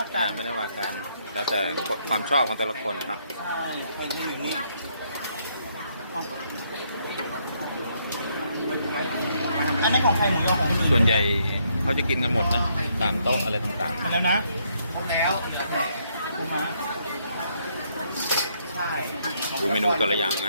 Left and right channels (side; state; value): both; inverted; correlation -0.72